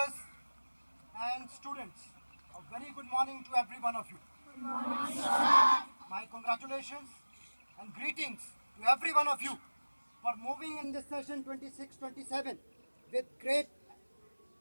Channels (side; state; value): both; inverted; correlation -1.00